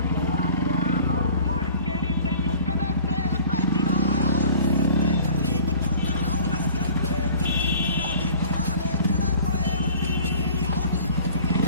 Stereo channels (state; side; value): inverted; both; correlation -0.46